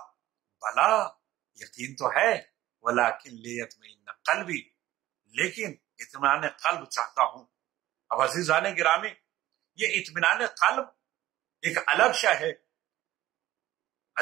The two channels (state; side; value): quieter; left; 15.2 dB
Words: بلا، یقین تو ہے، ولکن لیطمئن قلبی، لیکن اطمینان قلب چاہتا ہوں۔ اب عزیزان گرامی، یہ اطمینان قلب ایک الگ شے ہے۔